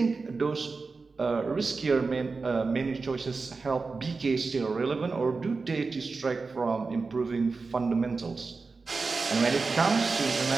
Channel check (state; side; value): quieter; left; 4.2 dB